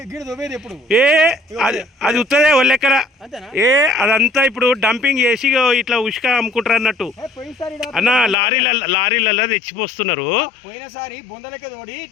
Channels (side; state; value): right; drops out; at 8.3 s